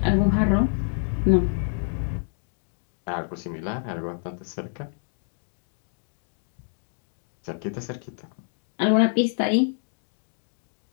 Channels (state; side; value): silent; right; digital silence